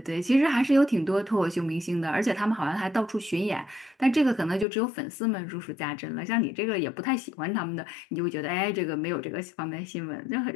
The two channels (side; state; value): right; drops out; at 4.7 s